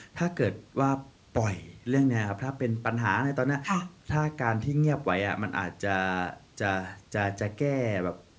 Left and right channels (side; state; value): both; identical; correlation 1.00